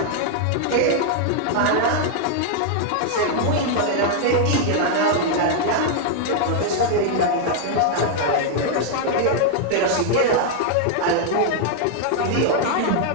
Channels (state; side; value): different; both; correlation 0.00